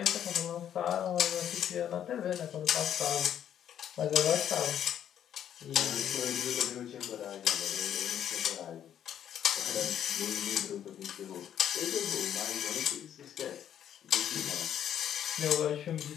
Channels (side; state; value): right; quieter; 9.9 dB